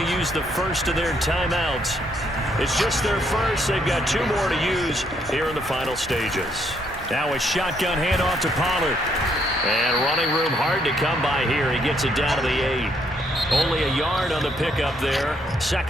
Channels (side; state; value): both; normal; correlation 0.72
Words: to use the first of their timeouts. It's just their first. They've got 2 more to use here in the final stages. Now a shotgun handoff to Pollard. And running room hard to come by here. He gets it down to the 8. Only a yard on the pickup there.